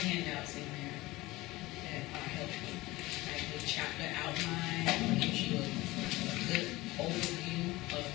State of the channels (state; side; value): quieter; right; 19.8 dB